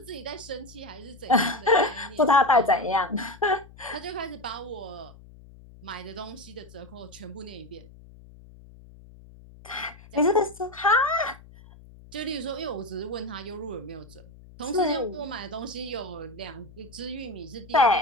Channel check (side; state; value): left; noise; hum, 21 dB below the sound